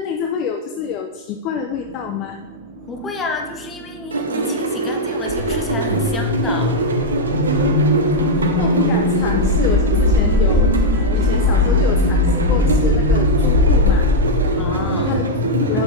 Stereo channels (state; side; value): normal; both; correlation -0.02